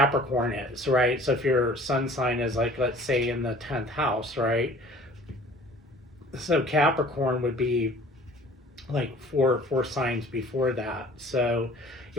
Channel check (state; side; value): normal; both; correlation 0.49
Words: is, right? So if your sun sign is like, let's say in the 10th house, right? So Capricorn would be like four signs before that. So